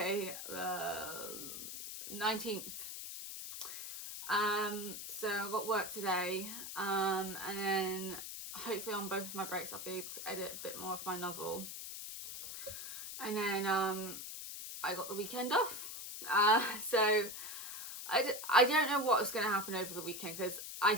the 19th. So I've got work today. And then hopefully on both of my breaks I'll be able to edit a bit more of my novel. And then I got the weekend off. So I don't know what's going to happen over the weekend, because I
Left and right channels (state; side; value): noise; left; hiss, 8 dB below the sound